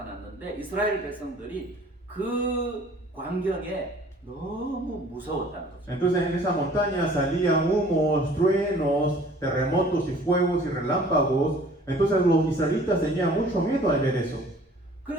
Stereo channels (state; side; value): normal; both; correlation 0.52